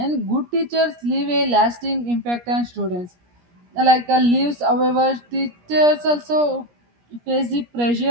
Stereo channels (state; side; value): late; left; 17 ms